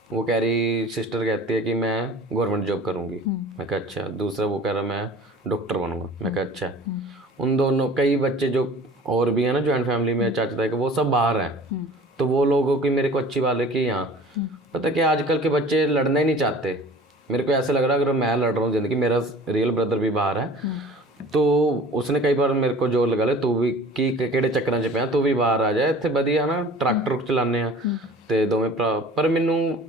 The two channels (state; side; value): normal; both; correlation 0.44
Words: वो कह रही, सिस्टर कहती है कि मैं गवर्नमेंट जॉब करूँगी। मैं कहा अच्छा। दूसरा वो कह रहा मैं डॉक्टर बनूँगा। मैं कहा अच्छा। उन दोनों कई बच्चे जो और भी हैं ना जॉइंट फैमिली में, चाचा ताई के, वो सब बाहर हैं। तो वो लोगों की मेरे को अच्छी बात है कि यहाँ पता क्या, आजकल के बच्चे लड़ना ही नहीं चाहते। मेरे को ऐसा लग रहा है अगर मैं लड़ रहा हूँ ज़िंदगी, मेरा रियल ब्रदर भी बाहर है, तो उसने कई बार मेरे को जोर लगा ले, तू भी की ਕਿਹੜੇ ਚੱਕਰਾਂ 'ਚ ਪਿਆ, ਤੂੰ ਵੀ ਬਾਹਰ ਆ ਜਾ, ਇੱਥੇ ਵਧੀਆ ਨਾ ਟਰੈਕਟਰ ਚਲਾਉਂਦੇ ਆ ਤੇ ਦੋਵੇਂ ਭਰਾ। ਪਰ ਮੈਨੂੰ